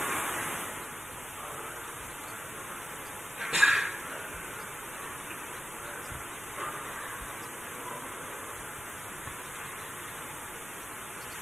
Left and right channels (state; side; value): noise; right; rumble, 20 dB below the sound